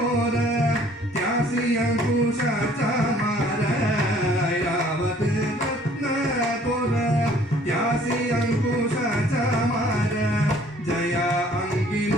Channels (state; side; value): normal; both; correlation 0.57